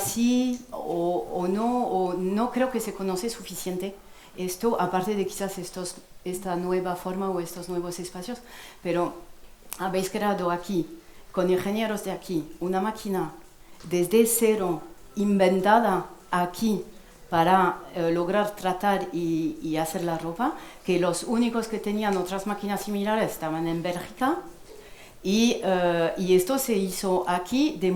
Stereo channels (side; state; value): both; identical; correlation 1.00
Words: o no creo que se conoce suficiente esto, aparte de quizás esta nueva forma o estos nuevos espacios, pero habéis creado aquí, con ingenieros de aquí, una máquina desde cero, inventada aquí para lograr tratar y hacer la ropa, que los únicos que tenían otras máquinas similares estaban en Bélgica, y esto se hizo aquí de